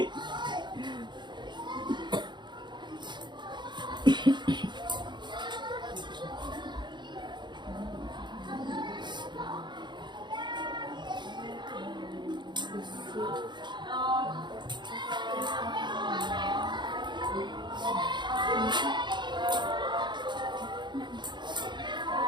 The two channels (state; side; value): late; left; 0.22 ms